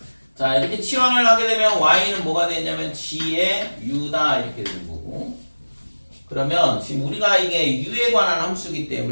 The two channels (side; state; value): both; inverted; correlation -1.00